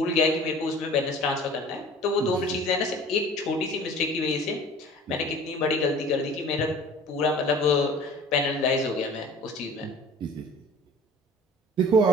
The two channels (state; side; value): normal; both; correlation 0.45